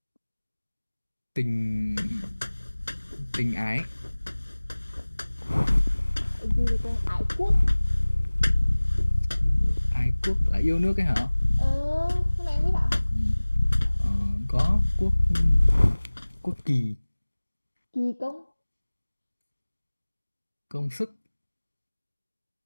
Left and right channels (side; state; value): both; inverted; correlation -1.00